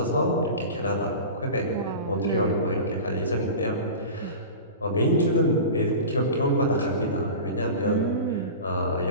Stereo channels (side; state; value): both; inverted; correlation -0.32